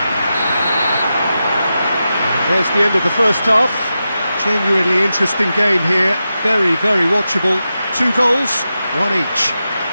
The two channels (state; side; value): inverted; both; correlation -0.90